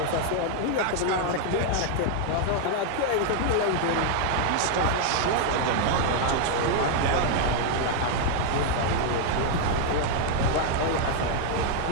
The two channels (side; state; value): both; different; correlation 0.00